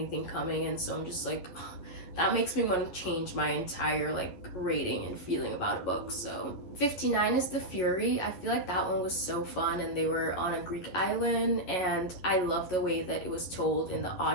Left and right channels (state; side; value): late; right; 11 ms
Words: coming, and so I'm just like, that makes me want to change my entire, like, rating and feeling about a book. So 59 is The Fury. I feel like that one was so fun, and they were on a Greek island, and I love the way that it was told in the